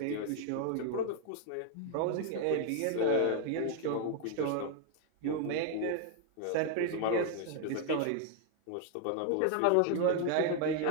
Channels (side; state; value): both; different; correlation 0.00